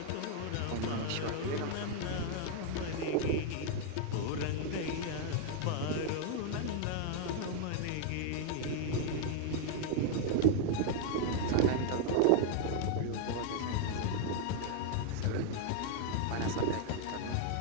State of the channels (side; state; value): both; different; correlation 0.00